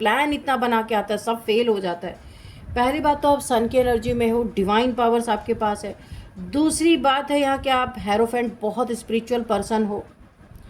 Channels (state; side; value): identical; both; correlation 1.00